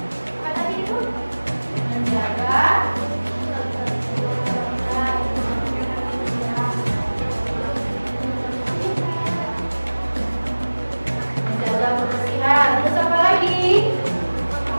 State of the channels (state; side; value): inverted; both; correlation -1.00